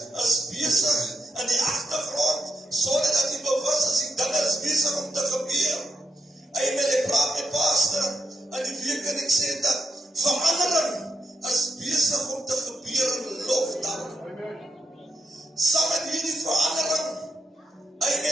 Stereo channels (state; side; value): normal; both; correlation 0.82